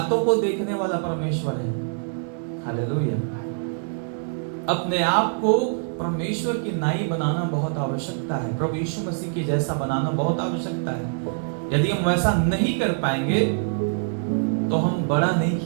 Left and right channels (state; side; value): silent; left; digital silence